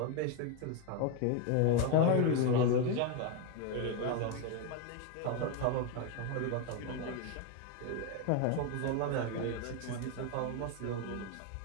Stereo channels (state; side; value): different; both; correlation 0.02